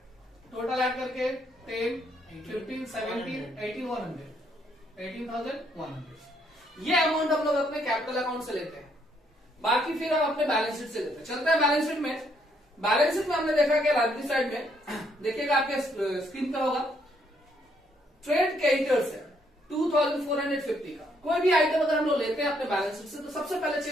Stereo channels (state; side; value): normal; both; correlation 0.71